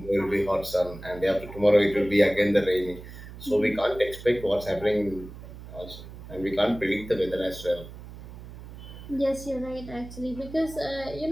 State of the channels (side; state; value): right; noise; hum, 14 dB below the sound